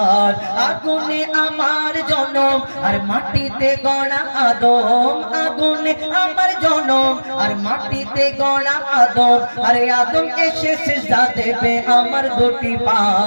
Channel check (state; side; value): inverted; both; correlation -1.00